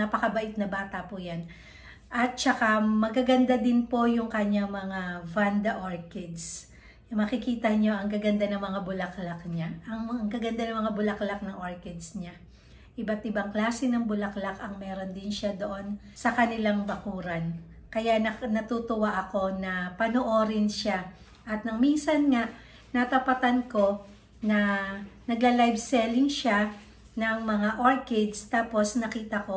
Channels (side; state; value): both; identical; correlation 1.00